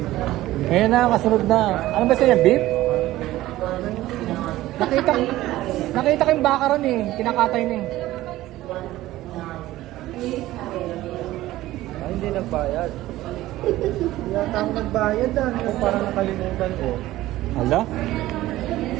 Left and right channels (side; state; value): left; quieter; 16.0 dB